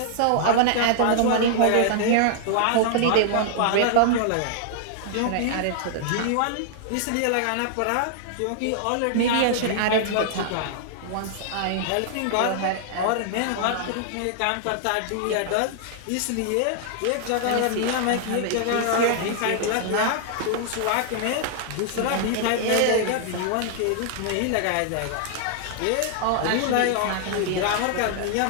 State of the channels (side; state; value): both; different; correlation -0.01